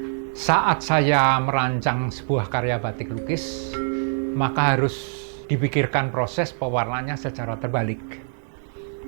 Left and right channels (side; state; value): left; silent; digital silence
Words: saat saya merancang sebuah karya batik lukis, maka harus dipikirkan proses pewarnanya secara terbalik.